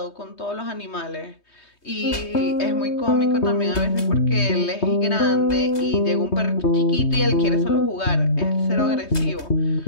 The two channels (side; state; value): right; late; 3.2 ms